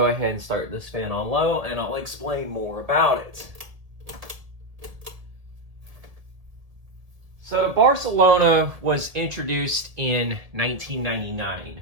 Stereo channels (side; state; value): left; late; 1.7 ms